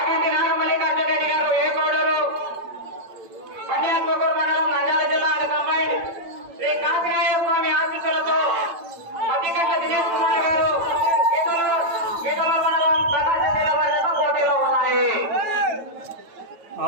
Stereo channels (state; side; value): late; left; 8.9 ms